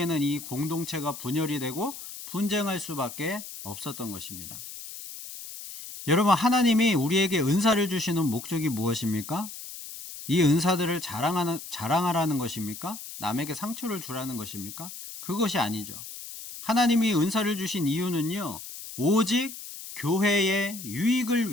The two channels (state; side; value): noise; left; hiss, 12 dB below the sound